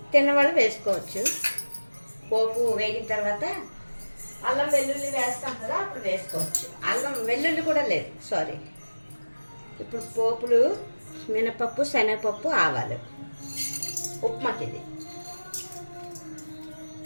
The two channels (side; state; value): both; inverted; correlation -1.00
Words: తిన్నవాళ్ళు వేసుకోవచ్చు. పోపు వేగిన తర్వాత అల్లం వెల్లుల్లి వేస్తాం కదా, అప్పుడు వేసుకోవచ్చు. అల్లం వెల్లుల్లి కూడా లేదు, సారీ. ఇప్పుడు పోపులు మినపప్పు, శనగపప్పు, ఆవాలు ఉప్మాకి ఇది.